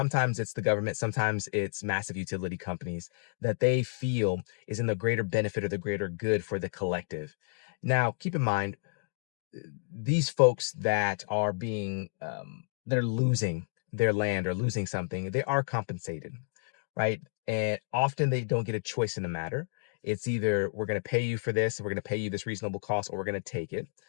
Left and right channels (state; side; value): silent; right; digital silence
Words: it's the government, sometimes it's massive utility companies that they feel is in the greater benefit or the greater good for the collective. Now, keep in mind, these folks that are they're losing their land or losing something, they are compensated, right? And often they don't get a choice in the matter. It's either, we're going to pay you for this, we're going to pay you this reasonable cost, or we're going to take it.